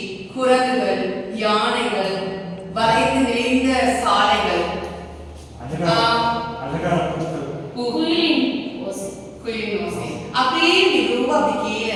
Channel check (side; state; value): both; identical; correlation 1.00